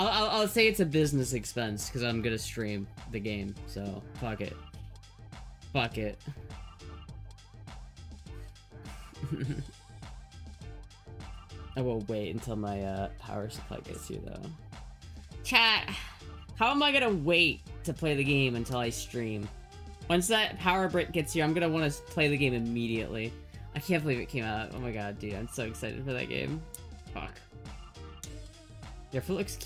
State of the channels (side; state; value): both; identical; correlation 1.00